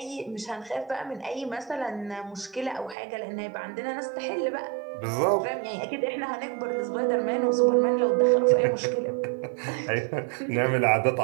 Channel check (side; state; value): left; drops out; at 3.0 s